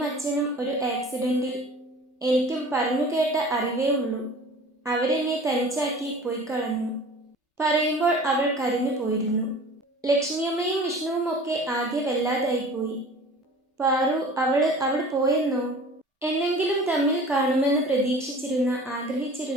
അച്ഛനും ഒരു ആക്സിഡൻറ്റിൽ. എനിക്കും പറഞ്ഞു കേട്ട അറിവേ ഉള്ളൂ. അവരെന്നെ തനിച്ചാക്കി പോയി കളഞ്ഞു. പറയുമ്പോൾ അവൾ കരഞ്ഞു പോയിരുന്നു. ലക്ഷ്മിയമ്മയും വിഷ്ണുവും ഒക്കെ ആകെ വല്ലാതായിപ്പോയി. പാറു, അവൾ പോയെന്നോ? എന്നെങ്കിലും തമ്മിൽ കാണുമെന്ന് പ്രതീക്ഷിച്ചിരുന്ന,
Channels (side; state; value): both; normal; correlation 0.43